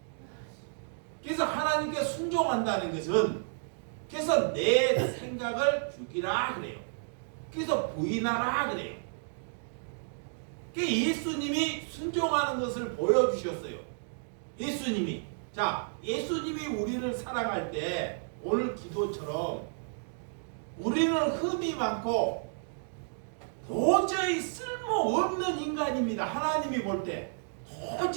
그래서 하나님께 순종한다는 것은, 그래서 내 생각을 죽이라 그래요. 그래서 부인하라 그래요. 예수님이 순종하는 것을 보여주셨어요. 예수님이. 자, 예수님이 우리를 사랑할 때 오늘 기도처럼 우리는 흠이 많고 도저히 쓸모없는 인간입니다. 하나님이 볼 때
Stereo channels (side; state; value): left; silent; digital silence